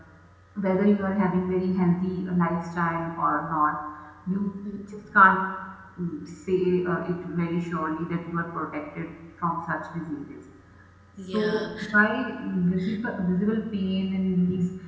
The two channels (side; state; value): both; identical; correlation 1.00